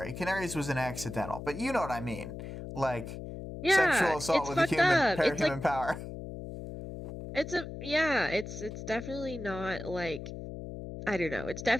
Canary's was an accidental, but you know what I mean, like Yeah, sexual assault it's with a fucked human, up. It's like human power. it's definitely not like I don't know. It's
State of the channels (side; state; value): left; noise; hum, 9 dB below the sound